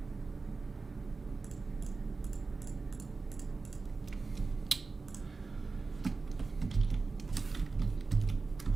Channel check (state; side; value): quieter; left; 4.1 dB